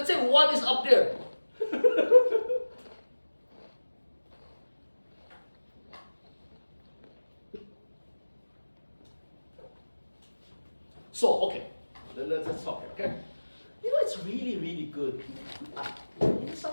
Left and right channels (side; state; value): both; inverted; correlation -1.00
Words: say 1 is up there. So, okay, let's talk here, okay? It's really, really good.